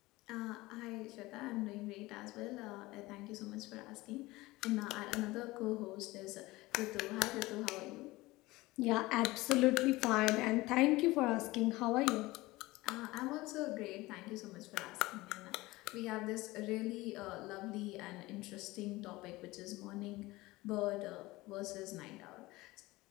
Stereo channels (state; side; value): quieter; right; 20.1 dB